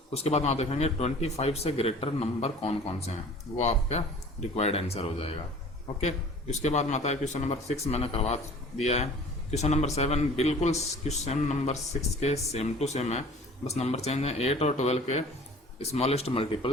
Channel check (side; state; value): both; normal; correlation 0.46